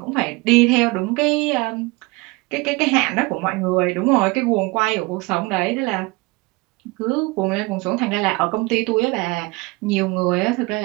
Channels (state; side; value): quieter; left; 24.6 dB